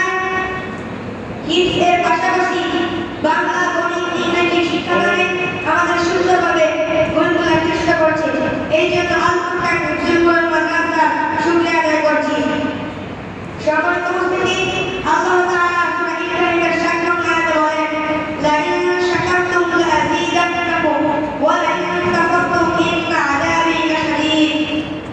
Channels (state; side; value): identical; both; correlation 1.00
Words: হিফজের পাশাপাশি বাংলা, গণিত, ইংরেজি শিক্ষাদানে আমাদের সুন্দরভাবে গড়ে তোলার চেষ্টা করছে। এই জন্য আল ফুরকান হিফজুল কোরআন মাদ্রাসার শুকরিয়া আদায় করছি। সম্মানিত উপস্থিতি, আল্লাহ তাআলা সূরা ইব্রাহিমের 7 নং আয়াতে বলেন, লা ইন শাকারতুম লাযীদান্নাকুম ওয়া লা ইন কাফারতুম ইন্না আযাবি লাশাদীদ।